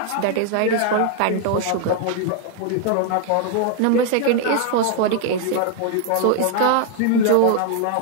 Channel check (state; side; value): different; both; correlation 0.00